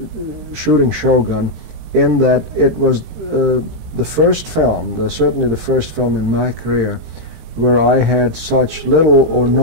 shooting Shogun, in that it was the first film, certainly the first film in my career, where I had such little or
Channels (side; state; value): left; late; 18 ms